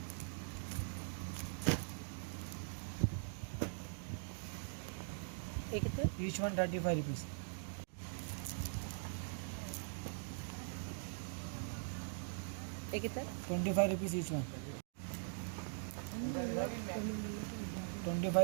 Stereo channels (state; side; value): silent; left; digital silence